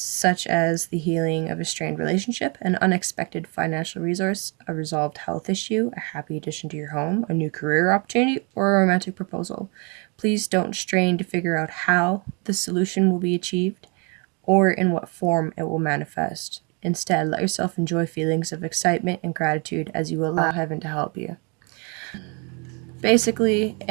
as the healing of a strained relationship, an unexpected financial resource, a resolved health issue, a happy addition to your home, a new career opportunity, or a romantic proposal. Please don't strain to figure out how the solution will be achieved or in what form it will manifest. Instead, let yourself enjoy feelings of excitement and gratitude as you allow heaven to help you. Basically,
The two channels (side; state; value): left; quieter; 33.5 dB